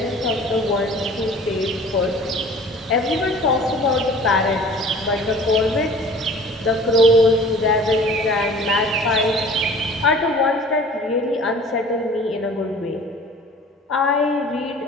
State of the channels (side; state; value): both; normal; correlation 0.46